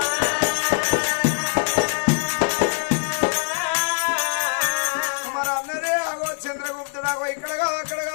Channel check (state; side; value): silent; right; 56 dB below the other